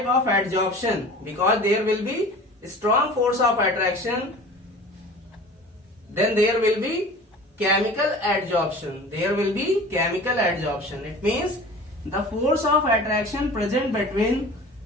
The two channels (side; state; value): both; normal; correlation 0.40